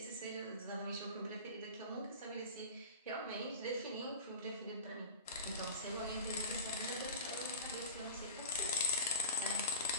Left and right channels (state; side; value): inverted; both; correlation -0.32